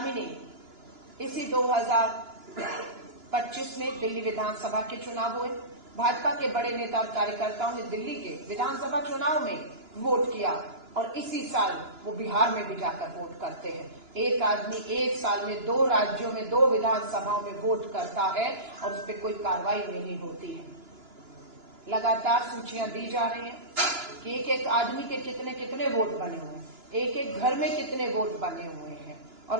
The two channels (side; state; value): left; late; 2.9 ms